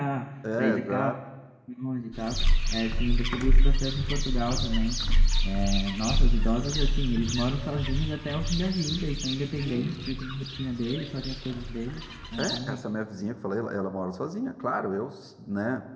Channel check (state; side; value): identical; both; correlation 1.00